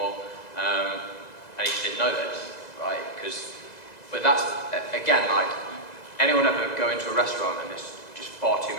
And he just didn't know this, right? But that's, again, like, anyone ever go into a restaurant and there's just far too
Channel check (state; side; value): late; right; 2.0 ms